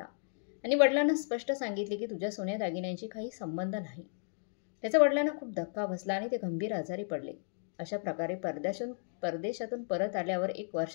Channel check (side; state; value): right; silent; digital silence